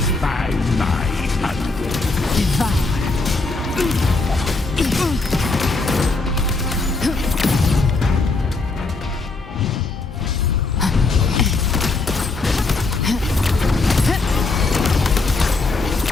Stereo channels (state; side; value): quieter; right; 3.6 dB